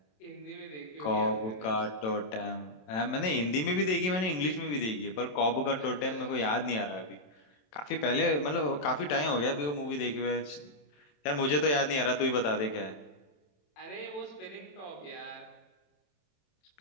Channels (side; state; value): right; late; 27 ms